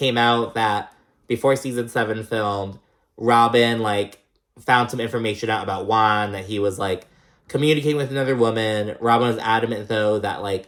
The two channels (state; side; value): identical; both; correlation 1.00